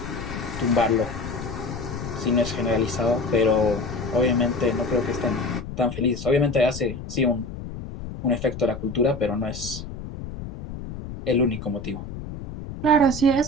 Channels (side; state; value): left; noise; rumble, 10 dB below the sound